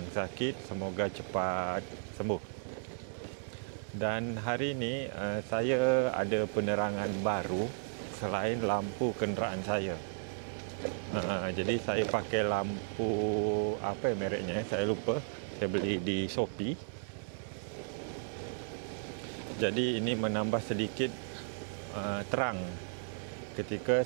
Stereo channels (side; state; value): left; silent; digital silence